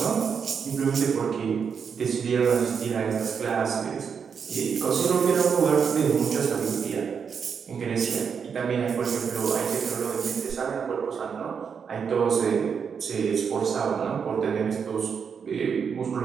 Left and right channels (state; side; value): quieter; left; 6.6 dB